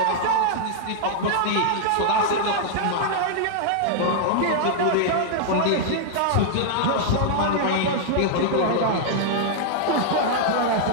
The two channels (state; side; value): different; both; correlation -0.01